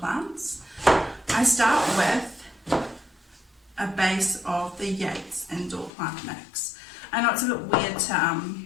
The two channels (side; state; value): right; drops out; at 5.9 s